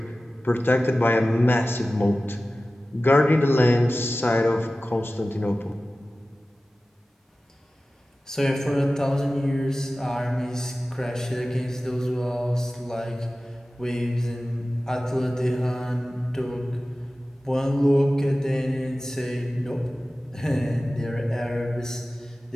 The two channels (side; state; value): both; normal; correlation 0.96